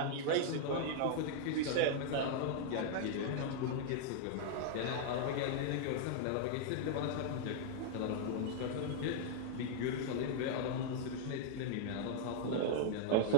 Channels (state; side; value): different; both; correlation -0.01